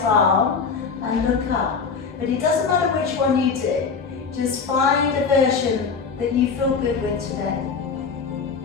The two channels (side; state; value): right; quieter; 5.4 dB